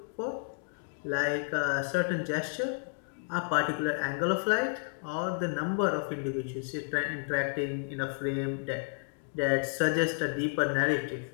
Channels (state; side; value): silent; right; 57 dB below the other